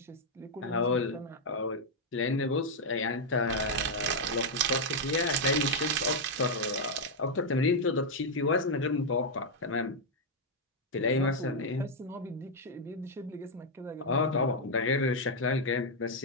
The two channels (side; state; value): both; normal; correlation -0.02